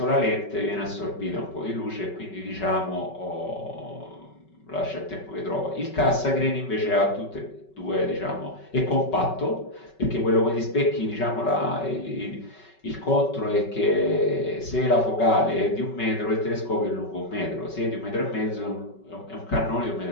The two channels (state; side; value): late; right; 5.3 ms